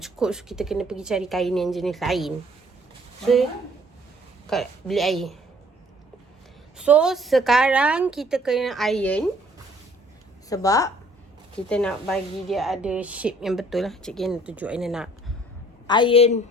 cukup, so kita kena pergi cari kain yang jenis lain. So kat beli air. So sekarang kita kena iron, sebab kita nak bagi dia ada shape yang betul lah. Cik Aina tunjuk Aina nak iron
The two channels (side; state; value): both; normal; correlation 0.58